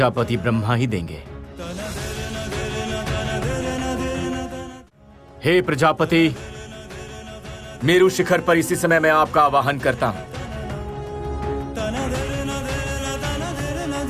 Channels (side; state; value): both; identical; correlation 1.00